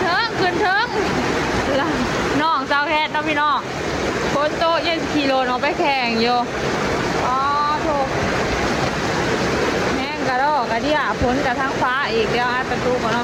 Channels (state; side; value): identical; both; correlation 1.00